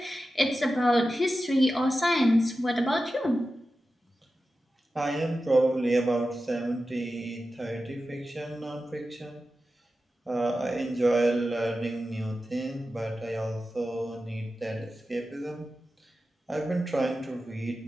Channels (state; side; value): normal; both; correlation 0.93